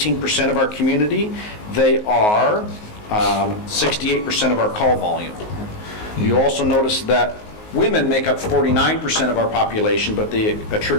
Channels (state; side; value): late; right; 19 ms